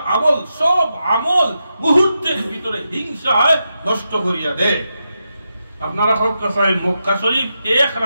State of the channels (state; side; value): inverted; both; correlation -0.87